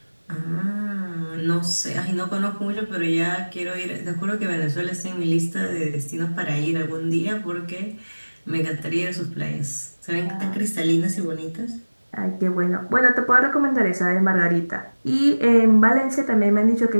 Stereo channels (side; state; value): both; inverted; correlation -1.00